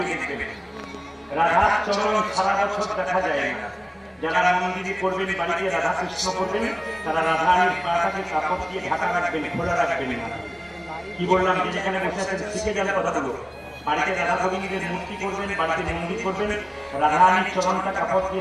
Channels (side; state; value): both; identical; correlation 1.00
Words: দেখবেন রাধার চরণ সারা বছর দেখা যায় না। যারা মন্দিরে করবেন, বাড়িতে রাধা কৃষ্ণ করবেন, তারা রাধারানীর পাটাকে কাপড় দিয়ে ঢাকা রাখবেন, খোলা রাখবেন না। কি বললাম, যে যেখানে বসে আছেন শিখে যান কথাগুলো। বাড়িতে রাধা গোবিন্দের মূর্তি করবেন, বাড়িতে মন্দির করবেন, রাধারানীর চরণটা কাপড় দিয়ে